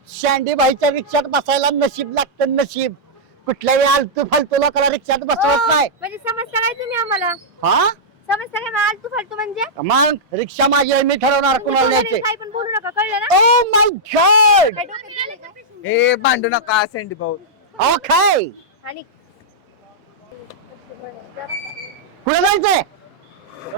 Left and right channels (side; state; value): both; normal; correlation -0.09